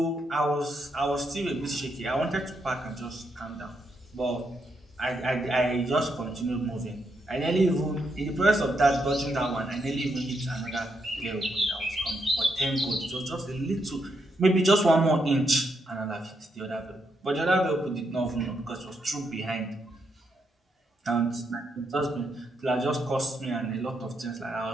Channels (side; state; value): both; normal; correlation 0.80